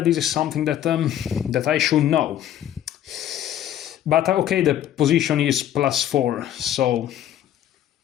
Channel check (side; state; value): right; quieter; 11.3 dB